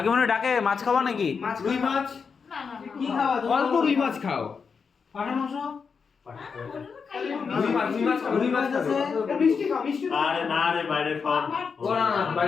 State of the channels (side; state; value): right; quieter; 5.7 dB